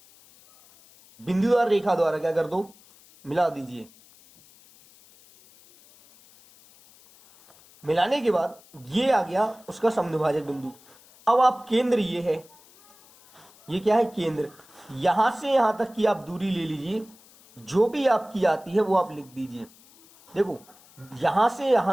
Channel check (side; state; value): left; noise; hiss, 26 dB below the sound